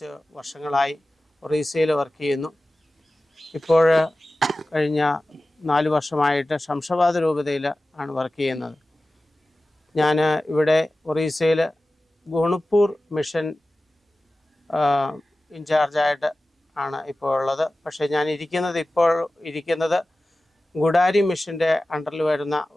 വർഷങ്ങളായി ഒറീസയിൽ വർക്ക് ചെയ്യുന്നു. ഇപ്പോൾ കഴിഞ്ഞ 4 വർഷമായിട്ട് ശംഷാബാദ് രൂപതയിൽ ആണ് വർക്ക് ചെയ്യുന്നത്. ഞാൻ ഇവിടെ ഒറീസയിൽ ഗുണുപ്പൂർ മിഷൻ ഇൻചാർജായിട്ട് ആണ് ഇപ്പോൾ ഉള്ളത്. പക്ഷേ ഞാൻ ഇപ്പോൾ ഇരിക്കുന്നത് ഗുഡാരി മിഷൻ്റെ അണ്ടറിൽ വരുന്ന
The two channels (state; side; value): normal; both; correlation 0.96